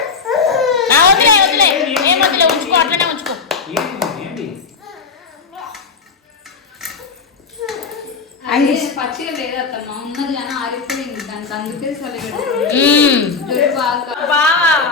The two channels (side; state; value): right; quieter; 5.1 dB